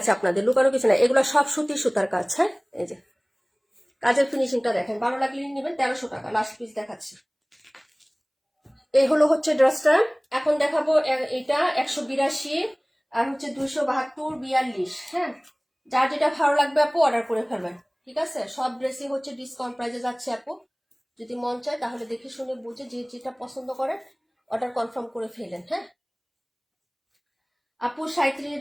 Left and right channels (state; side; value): identical; both; correlation 1.00